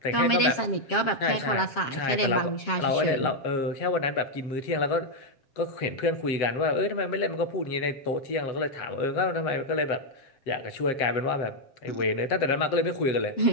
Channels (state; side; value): late; right; 7.4 ms